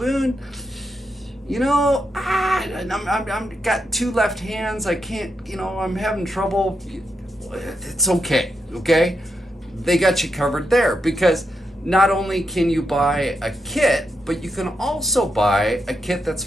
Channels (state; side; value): normal; both; correlation 0.84